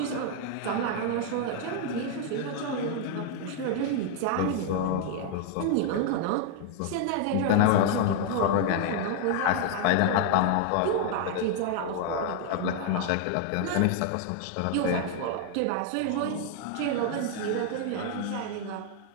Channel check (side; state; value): both; different; correlation 0.00